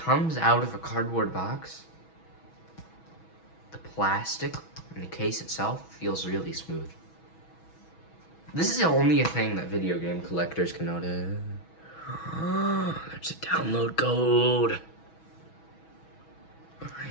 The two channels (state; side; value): late; right; 6.2 ms